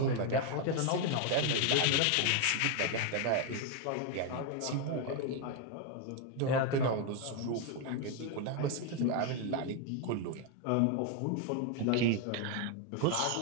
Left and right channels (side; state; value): both; different; correlation 0.01